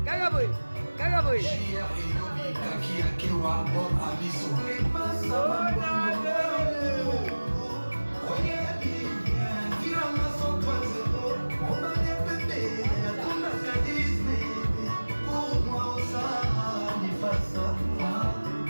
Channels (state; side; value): inverted; both; correlation -1.00